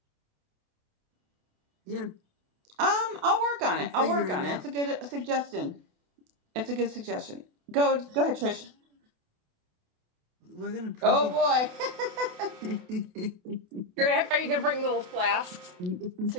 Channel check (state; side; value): late; left; 28 ms